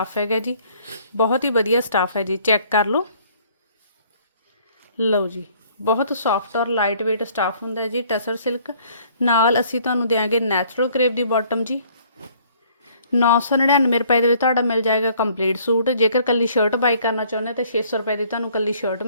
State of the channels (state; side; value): inverted; both; correlation -0.60